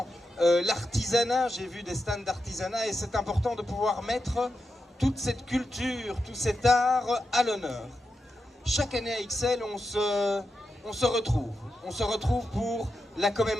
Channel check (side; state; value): both; normal; correlation 0.88